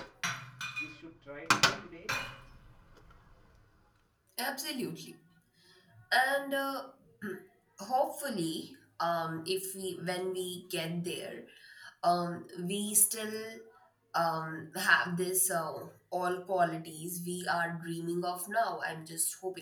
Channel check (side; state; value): both; identical; correlation 1.00